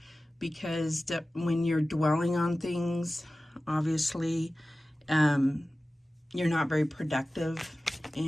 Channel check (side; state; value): both; normal; correlation 0.96